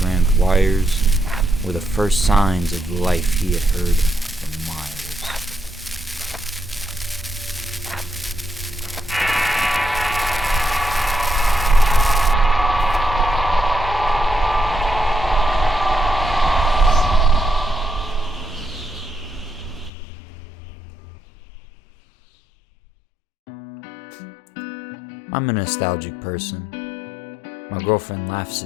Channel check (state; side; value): drops out; right; at 19.9 s